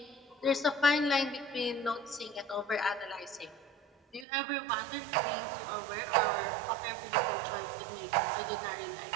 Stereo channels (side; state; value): left; drops out; at 4.2 s